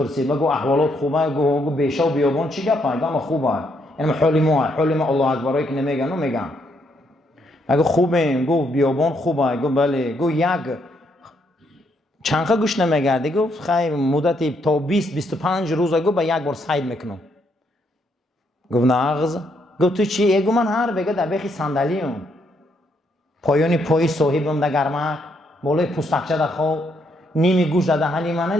بگو احوالات خوبه، گو بیشا و بیابان چی گپه؟ گم خوبه. یعنی حالی ما الله اکبرایی که نمیگن و میگن. اگه خوبه گفت بیابان خوبه، گفت بله، گفت یک چنخه گوش نمیگرده، گفت خیلی مدت تا 20-25 روز گفت با یک بار سعی میکنم. گفت ناغز، گفت تو چی؟ گفت من هر بگه در بخی صندلیم پایانی پای صاحبم در گرمک بالای پوستکچه در خواب نیمی گوش در دهنی منه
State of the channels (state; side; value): normal; both; correlation 0.74